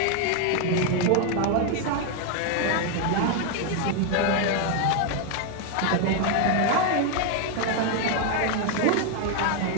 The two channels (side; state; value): both; different; correlation 0.01